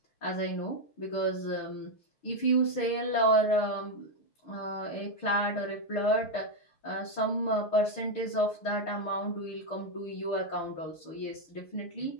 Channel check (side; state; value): right; late; 6.7 ms